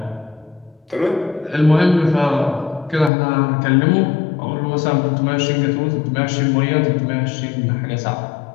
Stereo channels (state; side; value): drops out; right; at 3.1 s